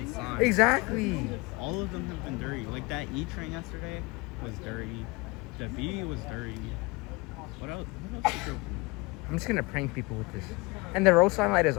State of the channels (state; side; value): quieter; right; 25.3 dB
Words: signs. Exactly. All of them have been dirty. Like that E train yesterday was dirty. The V was dirty. What else? What else is there? I'm just gonna prank people with this. And the road sign light is